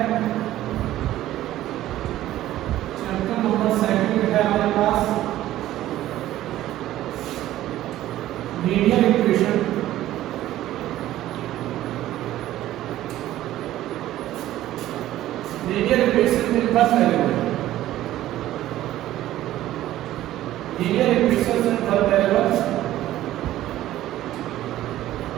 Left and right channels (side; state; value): left; quieter; 14.1 dB